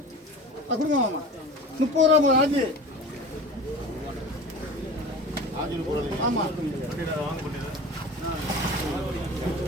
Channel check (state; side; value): normal; both; correlation 0.35